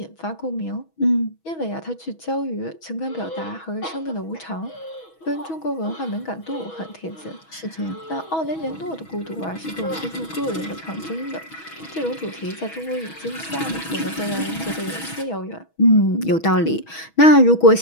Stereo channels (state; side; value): late; right; 6.2 ms